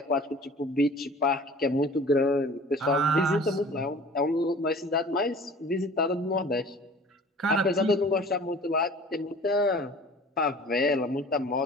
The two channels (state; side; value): normal; both; correlation 0.45